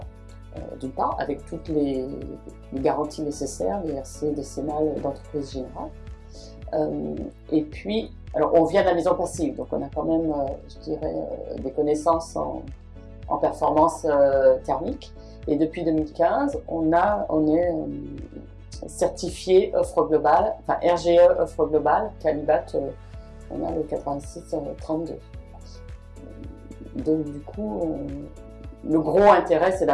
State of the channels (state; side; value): identical; both; correlation 1.00